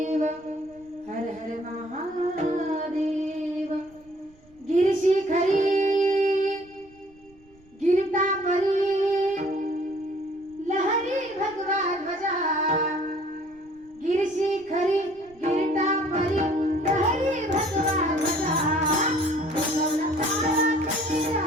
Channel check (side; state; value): right; noise; rumble, 28 dB below the sound